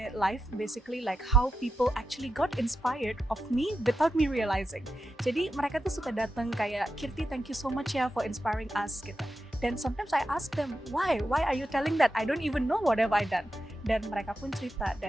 life basically like how people actually got inspired of me without me realizing. Jadi mereka tuh suka datang kayak, Kirti, thank you so much ya for inspiring us gitu. Dan sometimes I ask them, why are you telling that? I don't even know what have I done. Dan mereka pun cerita,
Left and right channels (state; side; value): normal; both; correlation 0.88